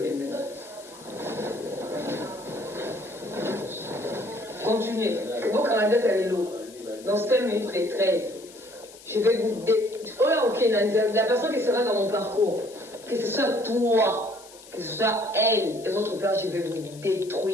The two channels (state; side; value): noise; left; hiss, 20 dB below the sound